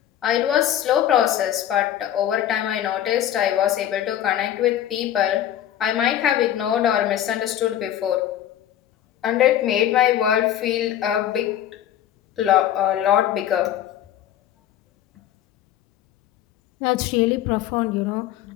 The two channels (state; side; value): quieter; right; 11.2 dB